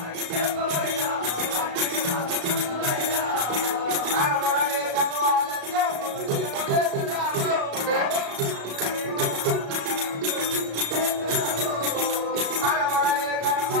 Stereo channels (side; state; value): left; late; 35 ms